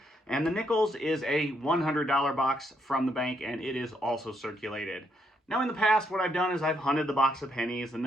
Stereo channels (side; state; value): both; normal; correlation 0.76